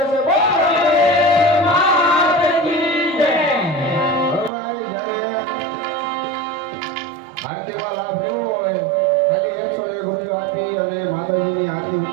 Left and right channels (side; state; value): left; drops out; at 4.5 s